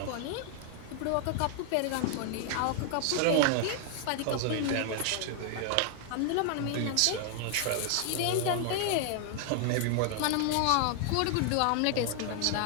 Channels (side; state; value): both; different; correlation 0.00